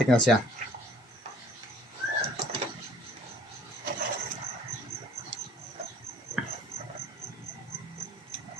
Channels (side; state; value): both; normal; correlation 0.56